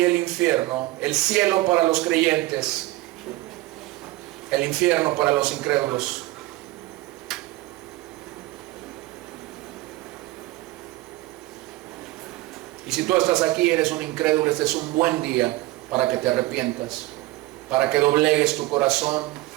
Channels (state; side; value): quieter; left; 18.3 dB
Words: el infierno. El cielo para los creyentes, el infierno para los incrédulos. Y si tú estás aquí, eres un incrédulo, este es un buen día para que te arrepientas, para que doblegues tu corazón,